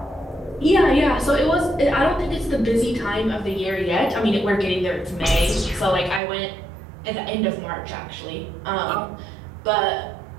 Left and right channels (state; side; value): drops out; left; at 6.2 s